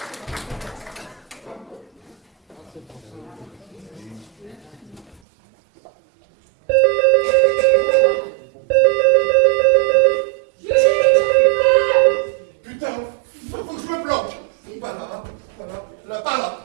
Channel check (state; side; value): drops out; left; at 5.2 s